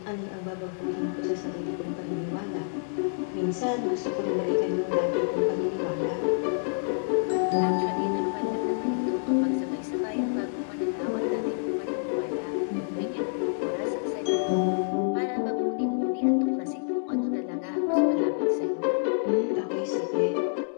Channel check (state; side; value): silent; right; 59 dB below the other